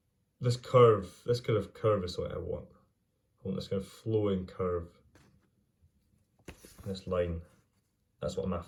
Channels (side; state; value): both; identical; correlation 1.00